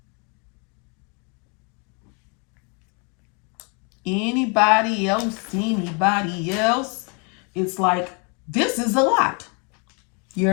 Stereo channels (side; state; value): right; quieter; 34.5 dB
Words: Anybody else? Anybody else? It's like, this is a lot.